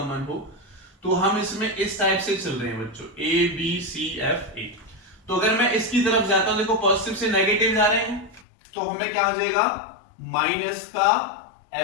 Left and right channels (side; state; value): right; drops out; at 8.5 s